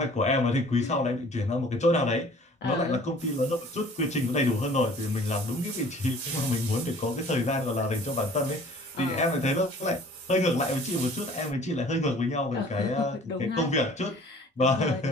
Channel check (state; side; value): normal; both; correlation 0.50